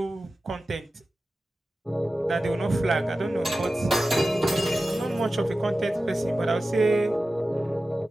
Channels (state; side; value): normal; both; correlation 0.94